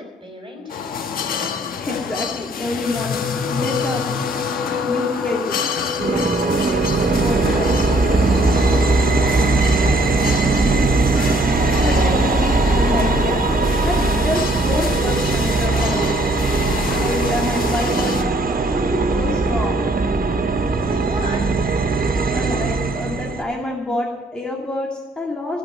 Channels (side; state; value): both; normal; correlation 0.63